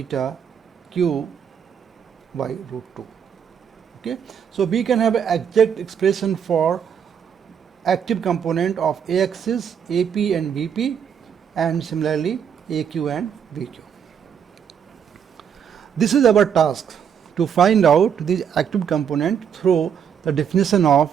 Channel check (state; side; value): quieter; left; 7.9 dB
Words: Q by root 2. Okay. So we can have an exact expression for active component of A axis, AP and BP, and similarly AQ and BQ. This is our task, to find out the active component through the definition of